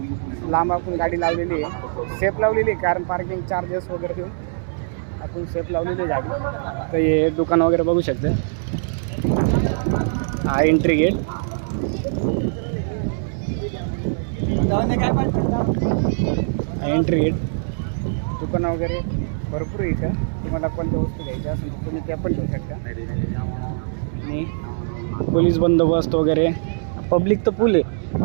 लांब आपण गाडी लावलेली आहे. सेफ लावलेली आहे, कारण पार्किंग चार्जेस वगैरे देऊन आपण सेफ लावलेली गाडी. तर हे दुकान वगैरे बघू शकते. हा एंट्री गेट. एंट्री गेट दुकानं वगैरे भरपूर आहे इथं. तुम्हाला कोणत्या वस्तू घ्यायच्या असेल तर तुम्ही त्या पण घेऊ शकता. आणि पोलीस बंदोबस्त वगैरे, पब्लिक तर फुल आहे,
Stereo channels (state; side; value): silent; left; 62 dB below the other